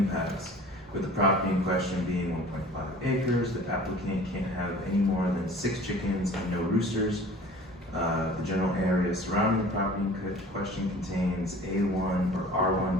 With the property in question being 1.5 acres, the applicant can't have any more than 6 chickens and no roosters. The general area surrounding the property in question contains A1 or R1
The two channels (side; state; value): both; normal; correlation 0.45